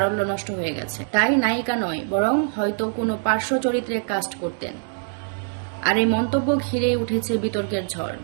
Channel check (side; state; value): left; silent; digital silence